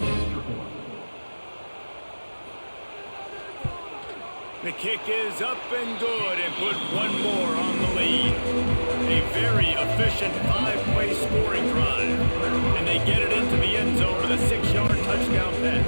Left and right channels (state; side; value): inverted; both; correlation -1.00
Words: The kick is up and good and put one more on the lead. A very efficient 5-play scoring drive. And they get it into the end zone with a 6-yard touchdown